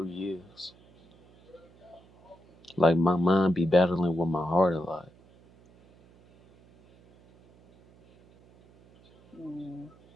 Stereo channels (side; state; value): right; noise; hum, 28 dB below the sound